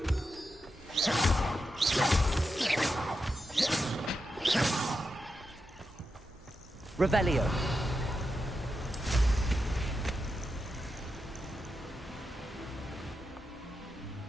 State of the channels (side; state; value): both; normal; correlation 0.88